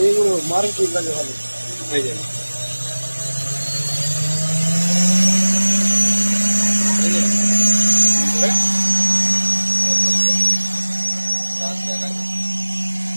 এইগুলো মারুতির কাছে ভালো হয়ে যাবে।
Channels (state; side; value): inverted; both; correlation -1.00